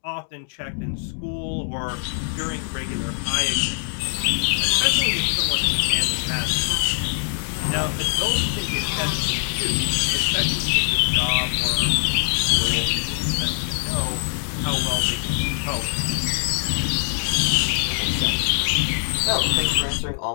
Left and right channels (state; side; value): silent; right; digital silence